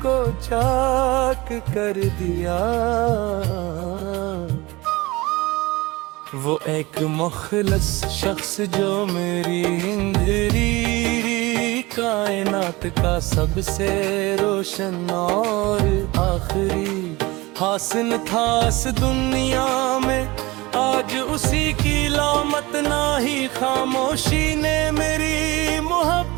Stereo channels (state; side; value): quieter; left; 21.8 dB